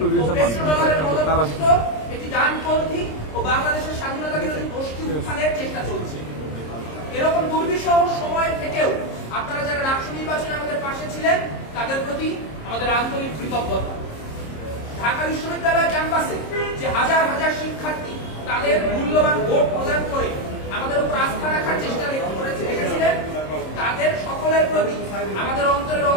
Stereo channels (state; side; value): late; right; 26 ms